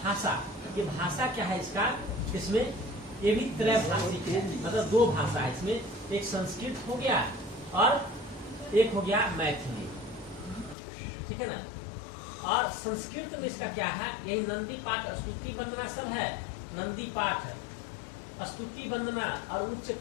ये भाषा क्या है इसका, इसमें ये भी त्रैभाषिक है, मतलब 2 भाषा है इसमें। एक संस्कृत हो गया और एक हो गया मैथिली। ठीक है ना। और संस्कृत में इसका क्या है, यही नंदी पाठ, स्तुति वंदना सब है। नंदी पाठ, स्तुति वंदना और उच्च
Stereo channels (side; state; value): right; drops out; at 10.8 s